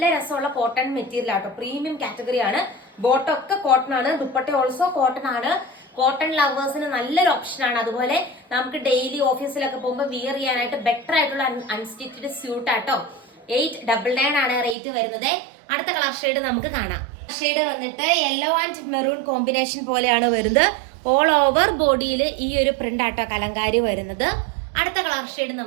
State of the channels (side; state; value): left; drops out; at 14.8 s